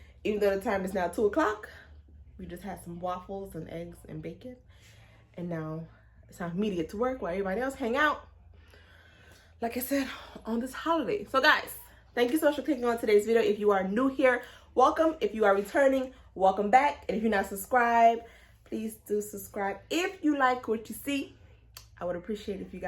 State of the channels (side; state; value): both; identical; correlation 1.00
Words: Even though the time is now 2 o'clock, we just had some waffles and eggs and bacon. And now it's time for me to get to work while everybody else hang out, like I said, on this holiday. So guys, thank you so much for clicking on today's video. If you are new here, welcome. If you are returning, welcome back. And if you're not subscribed, please do subscribe. If you like what you see, I would appreciate if you